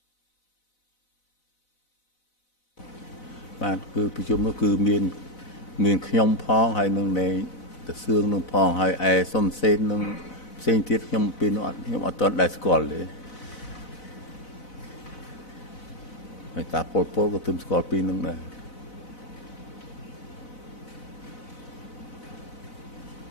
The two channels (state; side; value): late; right; 4.0 ms